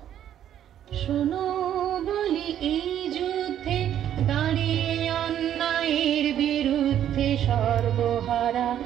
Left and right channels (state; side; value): quieter; left; 10.6 dB